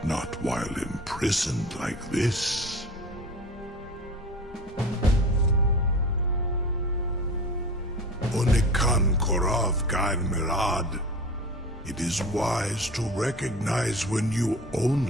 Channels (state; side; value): normal; both; correlation 0.35